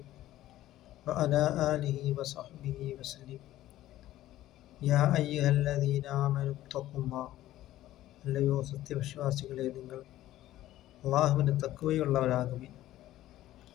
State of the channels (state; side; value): quieter; right; 14.4 dB